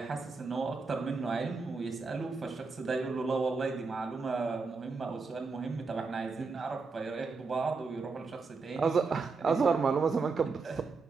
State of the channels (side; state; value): left; quieter; 4.4 dB